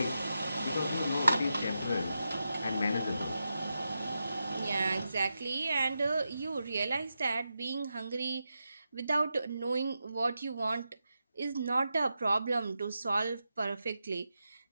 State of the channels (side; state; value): both; inverted; correlation -0.88